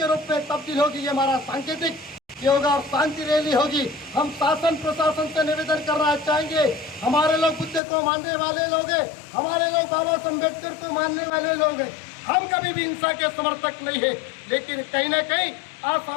रूप में तब्दील होगी, ये हमारा सांकेतिक होगा और शांति रैली होगी। हम शासन प्रशासन से निवेदन करना चाहेंगे, हमारे लोग बुद्ध को मानने वाले लोग हैं, हमारे लोग बाबा साहब अम्बेडकर को मानने वाले लोग हैं, हम कभी भी हिंसा के समर्थक नहीं है, लेकिन कहीं ना कहीं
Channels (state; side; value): drops out; right; at 7.8 s